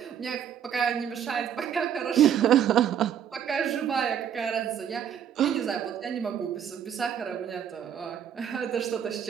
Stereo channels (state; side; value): quieter; left; 9.0 dB